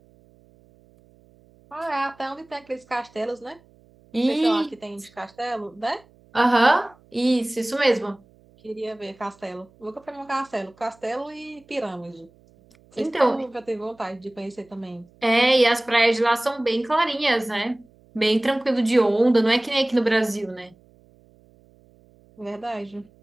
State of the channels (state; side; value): noise; right; hum, 29 dB below the sound